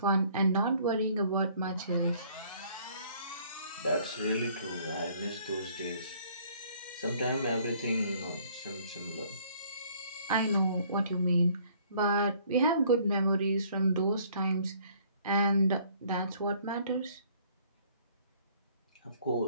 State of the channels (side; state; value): both; inverted; correlation -0.59